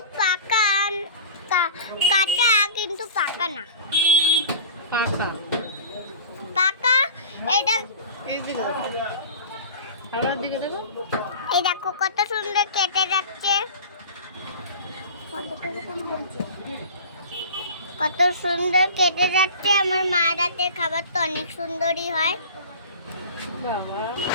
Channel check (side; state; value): both; inverted; correlation -0.37